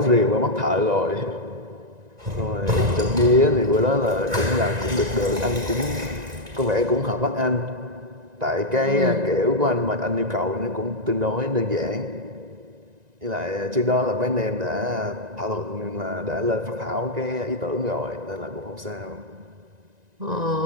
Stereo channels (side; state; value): left; late; 1.9 ms